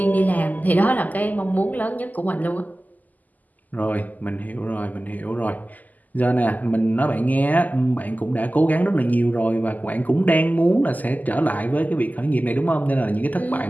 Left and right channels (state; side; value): late; right; 0.081 ms